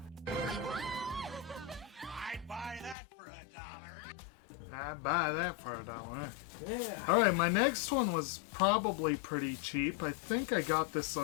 I'd buy that for $1. I'd buy that for $1. Yeah. Alright, my next one was probably pretty cheap. I think I got this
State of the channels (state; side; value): drops out; right; at 3.0 s